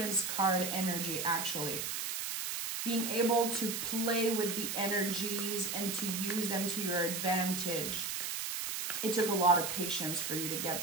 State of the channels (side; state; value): right; noise; hiss, 3 dB below the sound